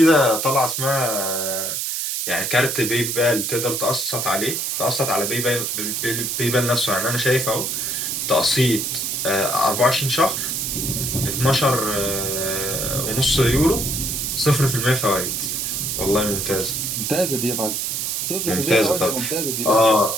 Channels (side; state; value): right; noise; hiss, 1 dB below the sound